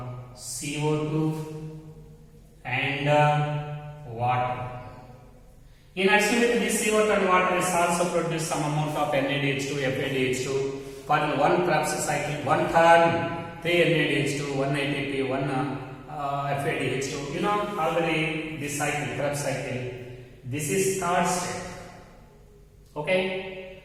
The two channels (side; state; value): both; identical; correlation 1.00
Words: CO2 and water. In addition with this CO2 and water is also produce some amount of NADH2, FADH2 for one Krebs cycle, one turn, 3 NADH2, 1 ATP, 1 FADH2. You know already this cycle, Krebs cycle. This is third step. Okay,